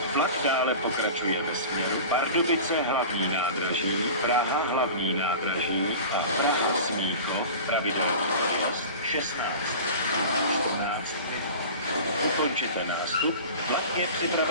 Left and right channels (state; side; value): inverted; both; correlation -0.35